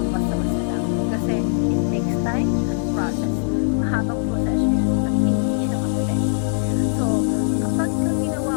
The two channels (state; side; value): silent; right; 65 dB below the other